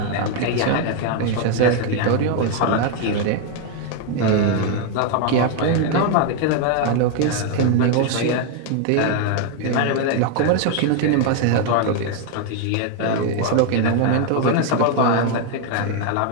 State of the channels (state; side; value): different; both; correlation 0.01